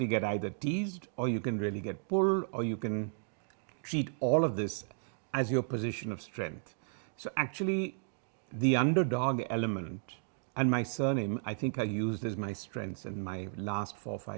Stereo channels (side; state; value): left; silent; digital silence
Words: get either teased or you can really get pulled, or you can treat all of this as your position of strength. So actually, the underdog element and my surname, I think I used as my strengths in my last 4 or